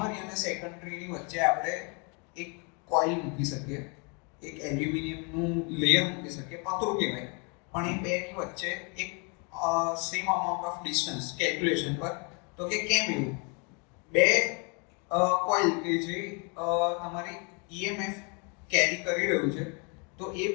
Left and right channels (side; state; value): right; quieter; 34.2 dB